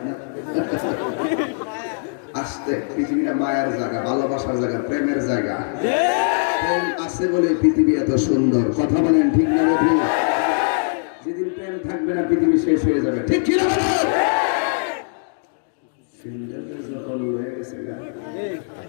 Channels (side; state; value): right; silent; digital silence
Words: না। আসতে পৃথিবীটা মায়ের জায়গা, ভালোবাসার জায়গা, প্রেমের জায়গা। প্রেম আছে বলে পৃথিবী এত সুন্দর। কথা বলেন ঠিক না? যেদিন প্রেম থাকবে না পৃথিবী শেষ হয়ে যাবে, ঠিক কি না? যখন হয়ে গেছে